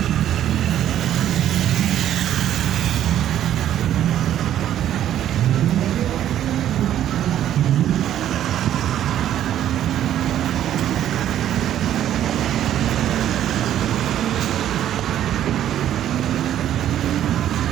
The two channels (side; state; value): left; quieter; 11.3 dB